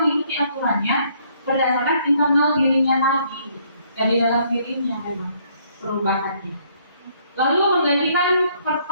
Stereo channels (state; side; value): inverted; both; correlation -0.66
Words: mengikuti aturannya berdasarkan internal dirinya tadi, dari dalam dirinya memang perubahannya. Lalu menggantikan